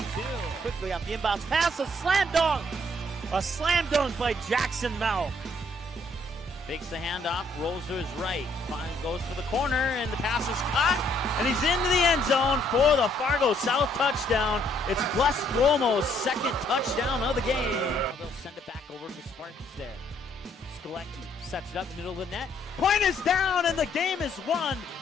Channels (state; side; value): normal; both; correlation 0.67